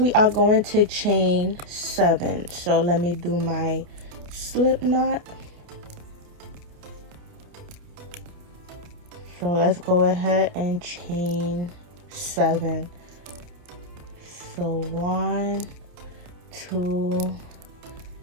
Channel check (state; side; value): late; left; 29 ms